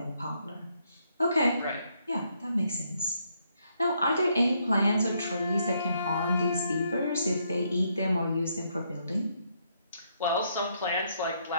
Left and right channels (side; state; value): both; inverted; correlation -0.74